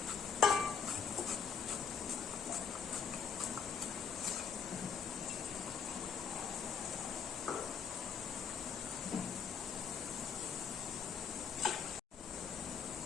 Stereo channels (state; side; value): quieter; right; 6.3 dB